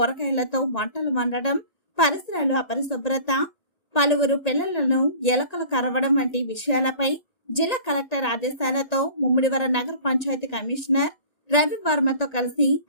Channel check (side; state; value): right; late; 1.9 ms